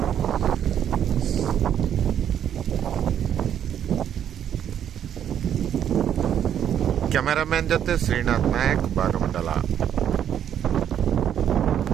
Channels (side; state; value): left; quieter; 9.6 dB